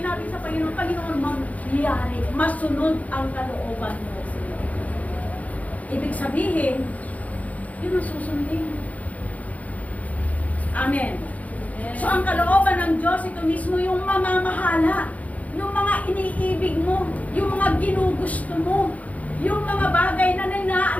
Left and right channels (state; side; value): late; right; 0.071 ms